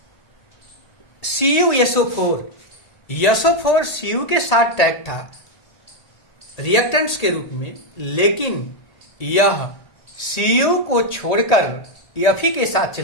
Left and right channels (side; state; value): right; late; 1.8 ms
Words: CuSO4 Cu के साथ tag था reactants के रूप में, लेकिन यह Cu को छोड़कर Fe के साथ